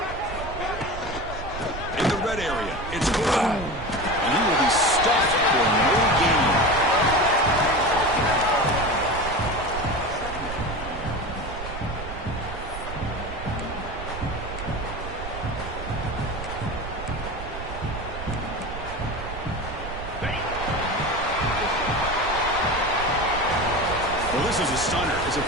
In the red area, it's Brown. And he will be stuffed for no gain. Well, this is a stunner. It's a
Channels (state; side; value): noise; right; rumble, 9 dB below the sound